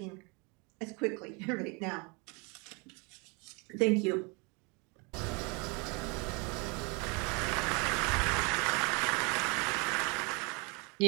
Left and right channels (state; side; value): quieter; left; 30.7 dB